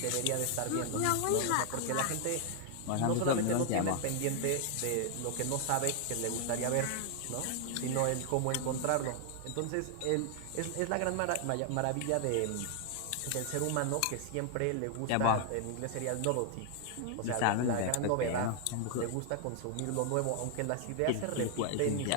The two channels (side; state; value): both; different; correlation 0.00